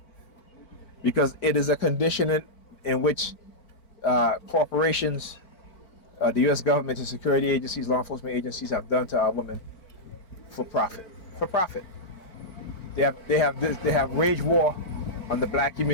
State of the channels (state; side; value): late; right; 4.5 ms